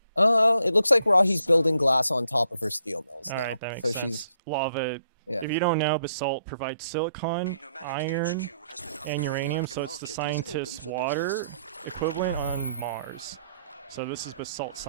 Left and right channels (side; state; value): both; inverted; correlation -0.71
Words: It looks like Rahi's building glass on top of her steel mills all now. right. That makes So sense. she's Lava. yeah. If you don't know, basalt provides silicon, iron, HQ has been and upgraded. uranium, The so it's the market is scientist's open for water business. equivalent on Mars. So this is basalt